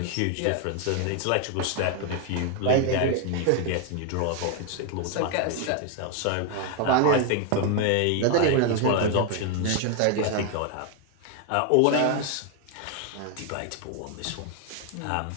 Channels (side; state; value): both; different; correlation 0.01